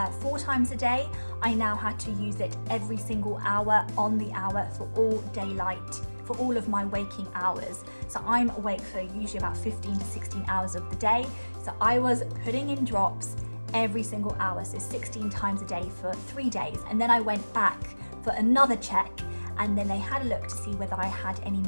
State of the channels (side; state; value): both; inverted; correlation -1.00